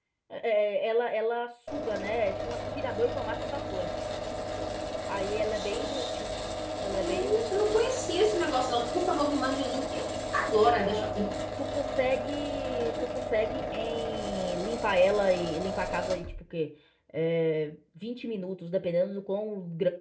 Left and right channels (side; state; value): both; identical; correlation 1.00